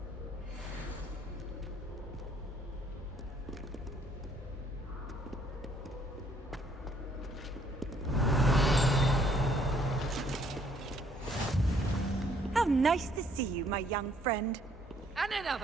Nice to see you, my young friend. And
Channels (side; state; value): both; normal; correlation 0.65